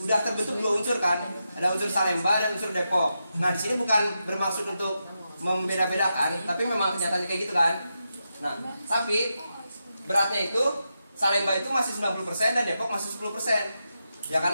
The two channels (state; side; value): inverted; both; correlation -0.87